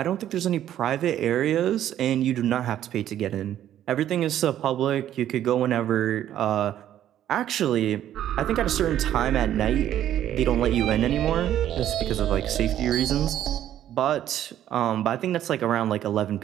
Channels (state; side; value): quieter; left; 11.5 dB